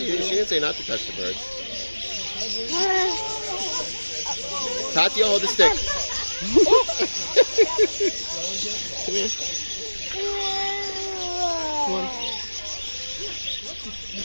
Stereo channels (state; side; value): inverted; both; correlation -1.00